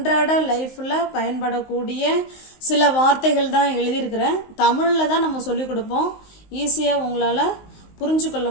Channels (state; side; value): late; right; 19 ms